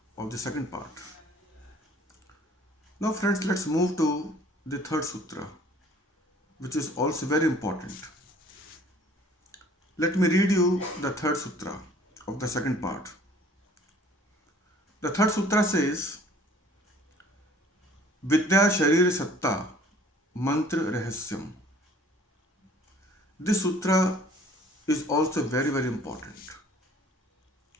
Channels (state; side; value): normal; both; correlation 0.54